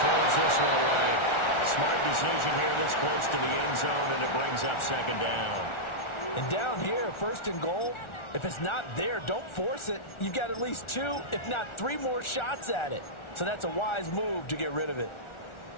this one away. Smart decision here this close to the end zone, and it brings up 2nd down. And down here, 1st and goal, if it's not there, don't force it. You've got at least 2, if not 3 more shots at it. So that's a wise move to get rid of it.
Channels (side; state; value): right; late; 1.4 ms